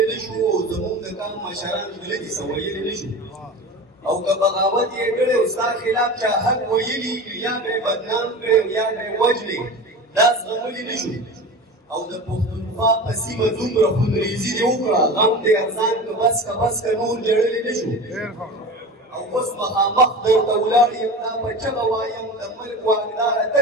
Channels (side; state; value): both; normal; correlation 0.31